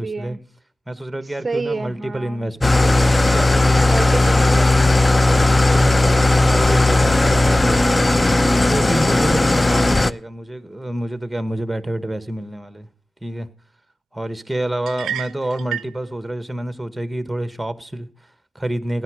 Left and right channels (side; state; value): both; normal; correlation 0.97